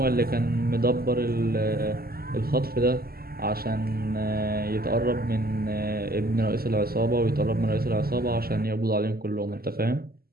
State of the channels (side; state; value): left; late; 0.44 ms